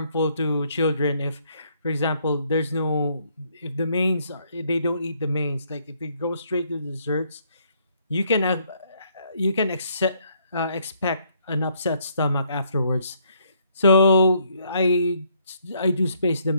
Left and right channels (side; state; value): both; inverted; correlation -0.69